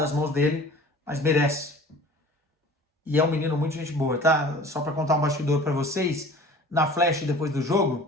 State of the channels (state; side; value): normal; both; correlation 0.44